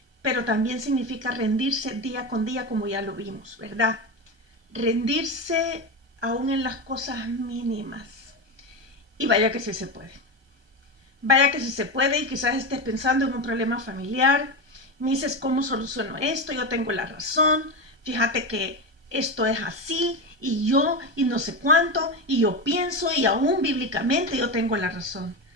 Pero también significa rendirse día con día, como ya lo vimos, ¿verdad? Rendirse aún en las cosas mínimas. Y vaya que sí se puede. Vaya que sí se puede, y quizás estés pensando en un problema familiar. Me dices, ¿cómo soluciono esto? Yo tengo la razón. Fíjate que esto es así, y yo, y no sé cuánto, y yo pienso, y aún bíblicamente yo tengo la razón.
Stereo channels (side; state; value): left; late; 1.2 ms